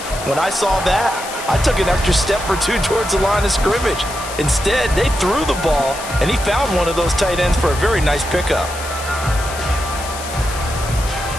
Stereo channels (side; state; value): left; noise; hiss, 11 dB below the sound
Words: when I saw that, I took an extra step or 2 towards the line of scrimmage. Instead, they threw the ball, and he found one of those tight ends for a very nice pickup.